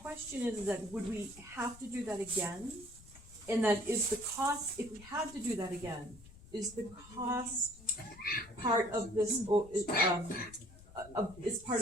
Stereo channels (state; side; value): noise; left; rumble, 20 dB below the sound